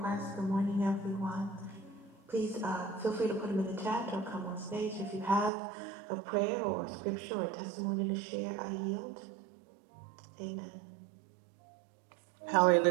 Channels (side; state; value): left; drops out; at 5.5 s